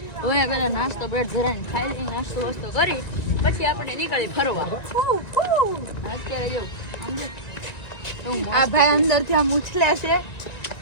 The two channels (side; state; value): right; late; 1.9 ms